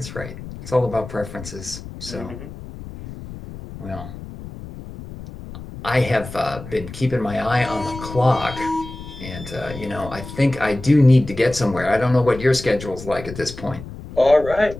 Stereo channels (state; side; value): noise; left; rumble, 13 dB below the sound